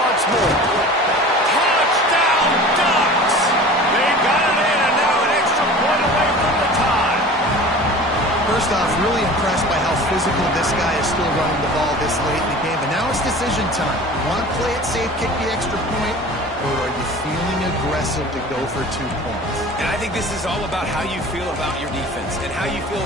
more. Touchdown, Ducks! They got it in, and now an extra point away from the tie. First off, really impressed by how physical this guy is still running the ball this late in the game. But now it's decision time. You want to play it safe, kick the extra point, or are you feeling aggressive to go for 2 points? And I think this is all about how you feel about your defense and how you feel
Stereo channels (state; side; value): normal; both; correlation 0.40